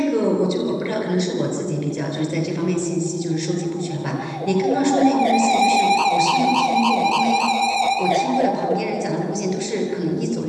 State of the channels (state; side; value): identical; both; correlation 1.00